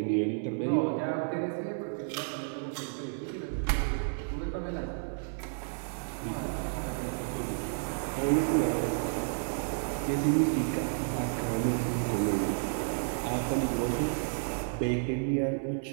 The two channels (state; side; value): silent; left; 57 dB below the other